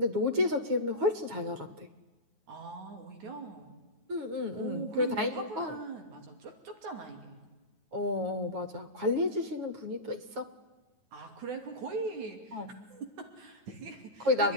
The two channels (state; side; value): late; left; 9.4 ms